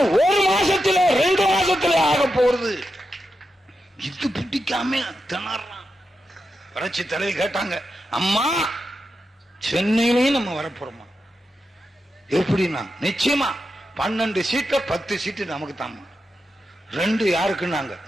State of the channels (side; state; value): both; normal; correlation 0.88